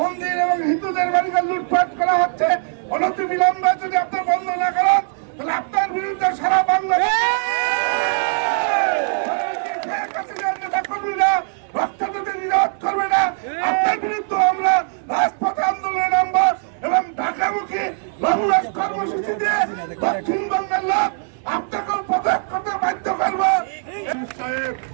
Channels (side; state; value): left; silent; digital silence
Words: এবং হিন্দুদের বাড়িঘর লুটপাট করা হচ্ছে। অনতি বিলম্বে যদি আপনার বন্ধ না করেন তাহলে আপনার বিরুদ্ধে সারা বাংলাদেশ নেতা কর্মীরা রক্তদাতে নিরাপদ করবে না। আপনার বিরুদ্ধে আমরা রাজপথে আন্দোলনে নামবো এবং ঢাকামুখী লংমার্চ কর্মসূচি দিয়ে দক্ষিণবঙ্গের লোক আপনাকে পদত্যাগ করতে বাধ্য করবো।